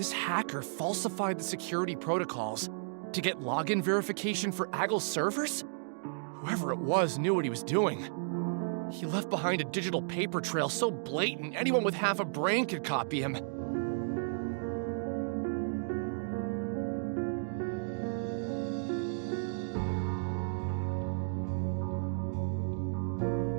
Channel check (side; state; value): left; silent; digital silence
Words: hacker falsified the security protocols to get login verification for Agile's servers? Whoever it was knew what he was doing. He left behind a digital paper trail so blatant anyone with half a brain could copy him.